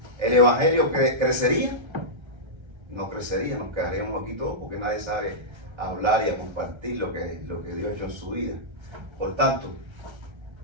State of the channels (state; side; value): late; left; 1.3 ms